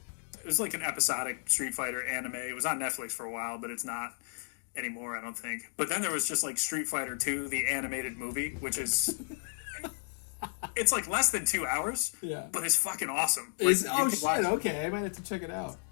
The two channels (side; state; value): right; silent; digital silence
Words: was like an episodic Street Fighter anime. It was on Netflix for a while, but it's not anymore, I don't think. But then there was just like Street Fighter 2, the animated movie, which is it's like less than 2 hours. Yeah, but it's fucking awesome. Oh shit! Okay, I might have to check it out.